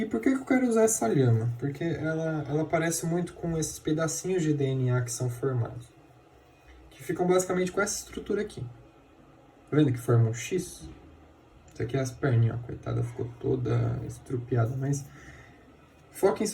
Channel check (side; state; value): both; identical; correlation 1.00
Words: por que eu quero usar essa lhama? Porque ela parece muito com esses pedacinhos de DNA que são formados. Que ficam basicamente com essa estrutura aqui. Tá vendo que forma um X? Isso aqui é as perninhas, ó, coitada, ficou toda estrupiada, mas foquem